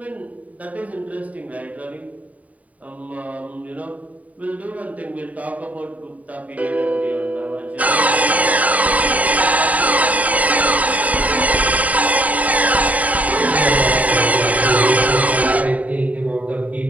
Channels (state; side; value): late; left; 0.071 ms